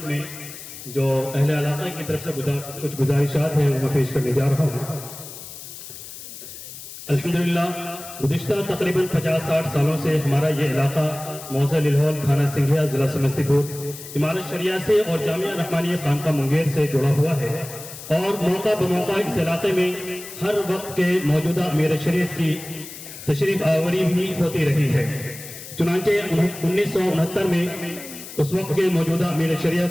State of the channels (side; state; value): left; noise; hiss, 13 dB below the sound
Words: میں جو اہل علاقہ کی طرف سے کچھ گزارشات ہیں وہ میں پیش کرنے جا رہا ہوں. الحمدللہ گزشتہ تقریباً 50-60 سالوں سے ہمارا یہ علاقہ موضع للہول تھانہ سنگھیا ضلع سمستی پور امارت شریعہ سے اور جامعہ رحمانیہ خانقاہ منگیر سے جڑا ہوا ہے اور موقع بموقع اس علاقے میں ہر وقت کے موجودہ امیر شریعت کی تشریف آوری بھی ہوتی رہی ہے. چنانچہ 1969 میں اس وقت کے موجودہ امیر